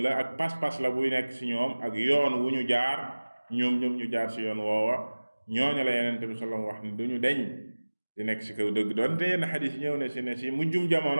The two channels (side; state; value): both; inverted; correlation -1.00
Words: la ak pas-pas la buy nekk ci ñoom ak yoon wu ñu jaar ñoom ñu jaar ci yoon woowa. ñooñu la Yonent bi sallallahu alayhi wa sallam wax ne duñu deñ di nekk ci kaw dëgg. doonte yenn xadis ñëw na ci ne ci mujjum